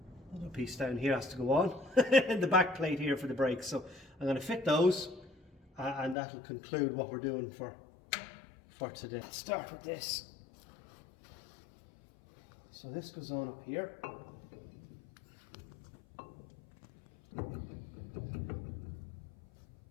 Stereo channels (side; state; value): right; drops out; at 6.2 s